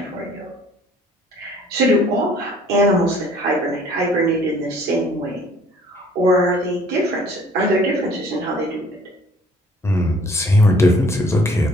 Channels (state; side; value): normal; both; correlation 0.56